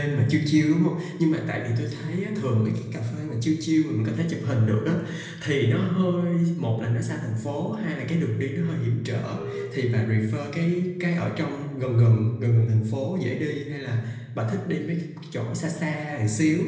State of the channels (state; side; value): identical; both; correlation 1.00